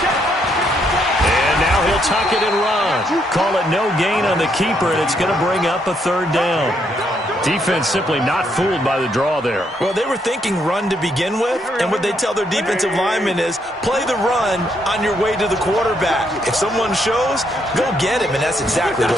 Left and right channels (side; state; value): both; normal; correlation 0.74